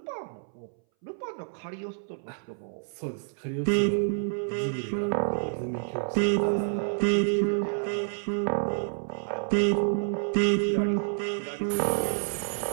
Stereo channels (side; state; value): left; silent; 59 dB below the other